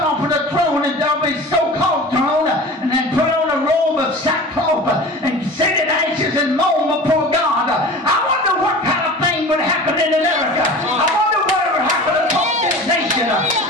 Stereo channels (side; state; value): both; normal; correlation 0.37